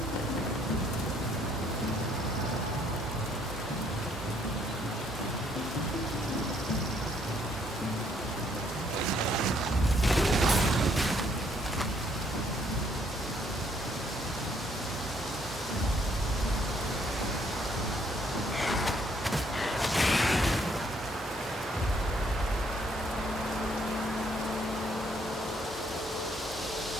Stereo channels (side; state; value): both; normal; correlation 0.67